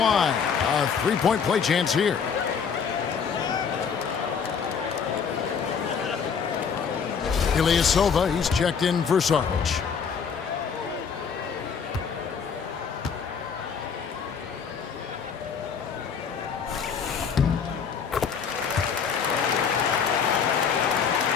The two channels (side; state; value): right; quieter; 6.5 dB